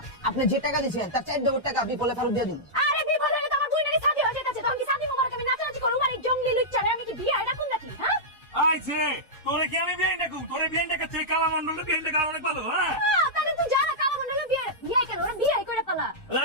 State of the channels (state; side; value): normal; both; correlation -0.10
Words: আপনি যে টাকা দিয়েছেন তার 4 ডবল টাকা বিপলে ফেরত দিয়ে দিন। আরে বিপদ হলে তো আমার দুই নারী শাদী হয়ে যেতেছে, তখন কি শাদী মোবারক আমি নাচানাচি করবো? মানে জঙ্গলি লুচ্চারে আমি কি বিয়ে এটা কোন নাকি? হ্যাঁ আইছে তোরে কি আমি বিয়ে ডাকু? তোরে বিয়ে ডাকাচ্ছে কালা মন্ডলের বিয়ে ডাকা অনেক ভালো। হ্যাঁ তাহলে তুই জানা কালো মন্ডলের বিয়ে বিয়ে কেন? ওরা বিয়ে করে পালা।